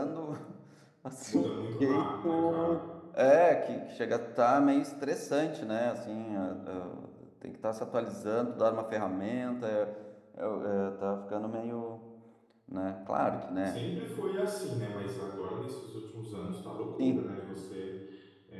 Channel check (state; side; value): identical; both; correlation 1.00